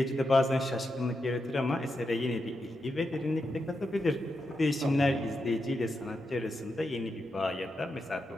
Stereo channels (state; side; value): normal; both; correlation 0.86